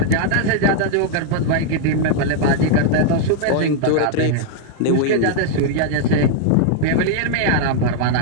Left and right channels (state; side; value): different; both; correlation -0.01